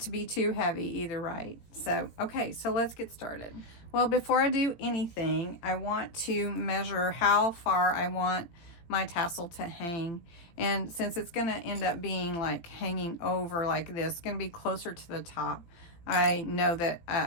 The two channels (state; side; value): late; right; 17 ms